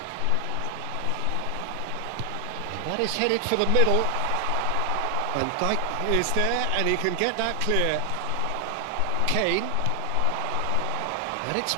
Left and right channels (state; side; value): different; both; correlation 0.00